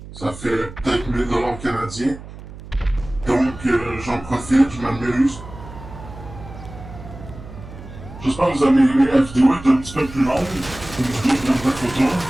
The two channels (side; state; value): right; noise; hum, 15 dB below the sound